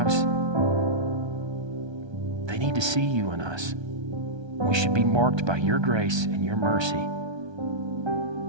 They need to see you in us. We should be marked by your grace and your mercy.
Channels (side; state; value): left; late; 1.3 ms